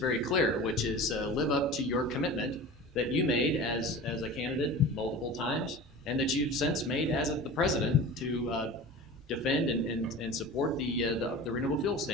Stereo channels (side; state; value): both; normal; correlation 0.35